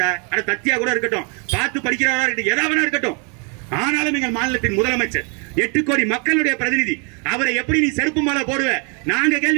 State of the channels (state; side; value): quieter; left; 34.9 dB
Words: அட தத்தியா கூட இருக்கட்டும், பார்த்து படிக்கிறவரா இருக்கட்டும், எதாவது இருக்கட்டும், ஆனாலும் எங்கள் மாநிலத்தின் முதலமைச்சர் 8 கோடி மக்களுடைய பிரதிநிதி, அவரை எப்படி நீ செருப்பு மாலை போடுவ? நாங்க